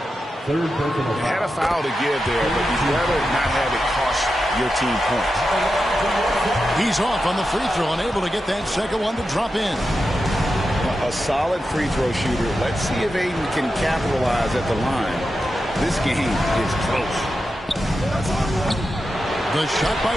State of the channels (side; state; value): both; normal; correlation 0.90